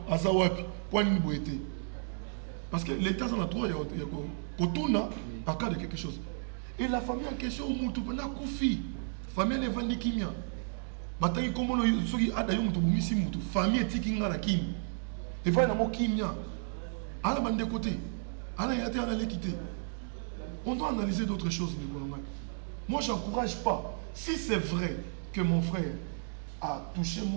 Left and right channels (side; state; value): left; silent; digital silence